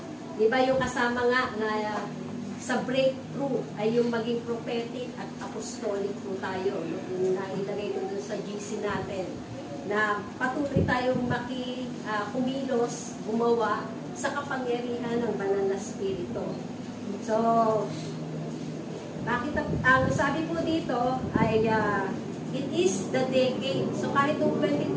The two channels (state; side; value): identical; both; correlation 1.00